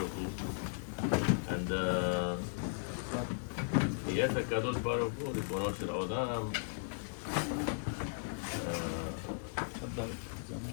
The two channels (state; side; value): silent; right; digital silence